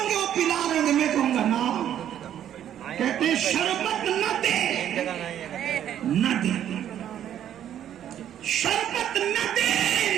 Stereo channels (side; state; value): left; quieter; 10.5 dB